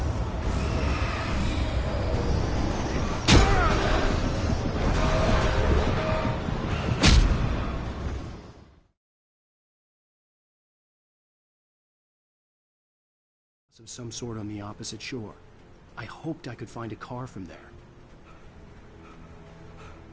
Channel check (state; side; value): identical; both; correlation 1.00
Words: Of some sort on the opposite shore. I hoped I could find a car from there.